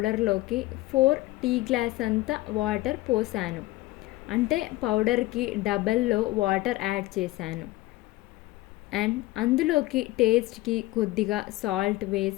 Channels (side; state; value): right; quieter; 18.8 dB